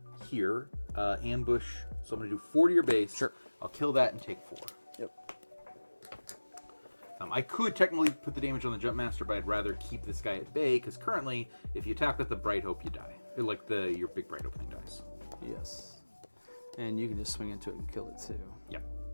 here. Ambush. So I'm going to do 4 to your base. Sure. I'll kill that and take 4. Yep. I could technically put the damage on the Jump Master, but I'd rather keep this guy at bay, because currently, if you attack with the Bright Hope, you die. Your big Bright Opening dies. Yes. And you can just swing into it and kill it too. Yep.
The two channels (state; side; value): inverted; both; correlation -1.00